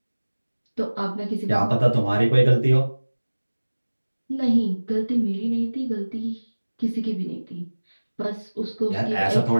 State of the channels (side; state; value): both; inverted; correlation -1.00